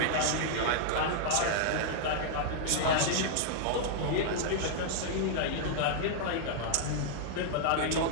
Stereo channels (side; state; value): both; different; correlation -0.01